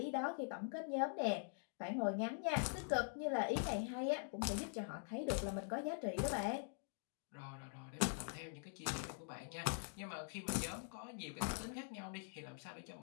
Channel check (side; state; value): right; silent; digital silence